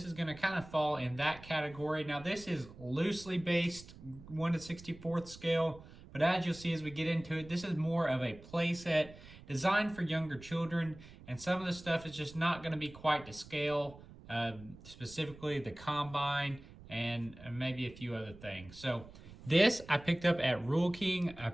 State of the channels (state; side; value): noise; right; rumble, 18 dB below the sound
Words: is going to kind of fall in that category. Now this is loosely based 1:64 scale, but as you'll see as we get into it, this is more of a play set designed for younger children, and some of the stuff is just not going to be quite to scale, specifically the combine and maybe a few other things. So this I picked up at Rural King. I